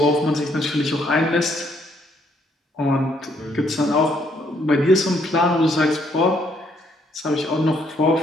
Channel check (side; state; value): both; normal; correlation 0.69